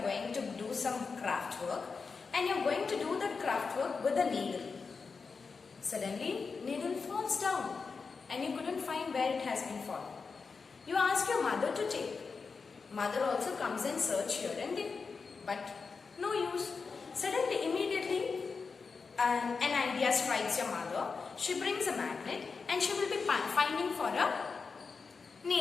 going to do some craft work, and you are going to do the craft work with a needle. Suddenly, needle falls down and you couldn't find where it has been fallen. You ask your mother to take. Mother also comes and search here and there, but no use. Suddenly, immediately, an idea strikes your mother. She brings a magnet and she will be finding for a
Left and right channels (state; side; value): quieter; right; 4.9 dB